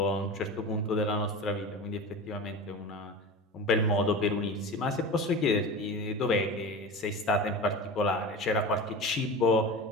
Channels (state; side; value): normal; both; correlation 0.30